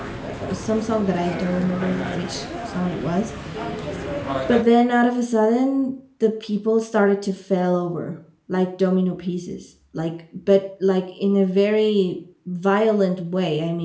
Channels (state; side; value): identical; both; correlation 1.00